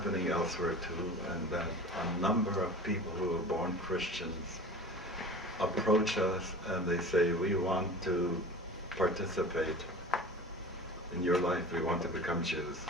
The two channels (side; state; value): both; normal; correlation 0.37